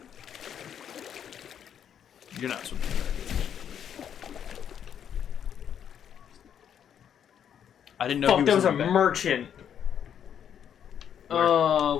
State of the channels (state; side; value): quieter; right; 8.9 dB